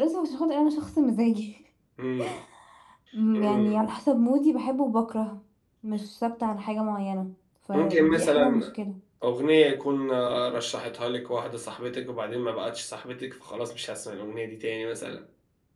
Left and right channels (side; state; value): both; identical; correlation 1.00